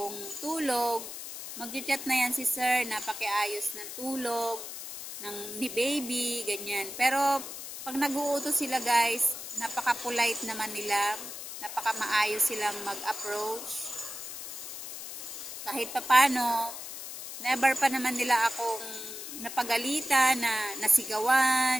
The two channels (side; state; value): left; noise; hiss, 9 dB below the sound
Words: tulog, mag-chat na yan si sir na pakiayos ng tulog ni baby, ganyan. Pero pag nag-uutos sila guys, napaka-polite naman nila. Napaka-maayos silang mag-approach. Kahit papano, never pa naman nila akong napagalitan, na